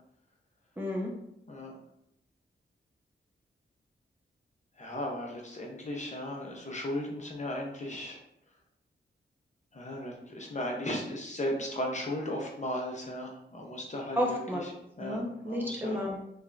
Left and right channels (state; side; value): normal; both; correlation 0.52